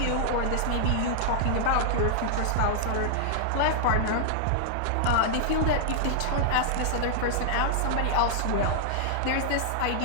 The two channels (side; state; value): both; different; correlation -0.01